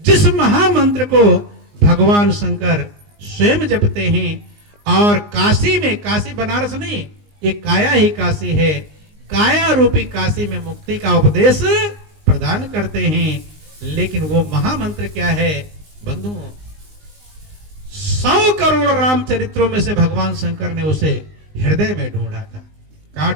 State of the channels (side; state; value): left; late; 19 ms